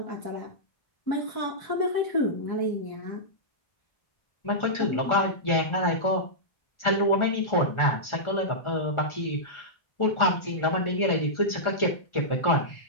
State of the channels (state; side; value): late; right; 1.4 ms